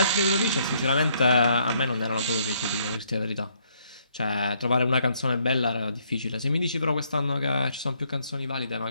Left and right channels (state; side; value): inverted; both; correlation -0.69